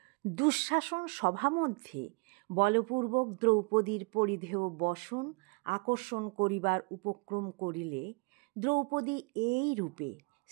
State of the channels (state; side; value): quieter; left; 30.9 dB